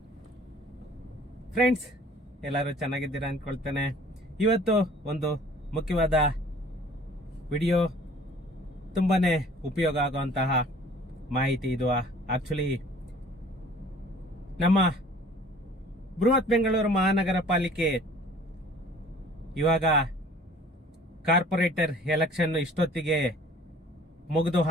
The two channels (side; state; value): both; normal; correlation 0.51